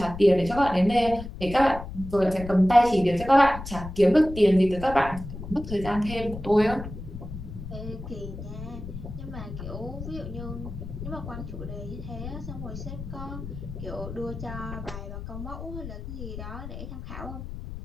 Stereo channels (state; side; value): noise; left; rumble, 10 dB below the sound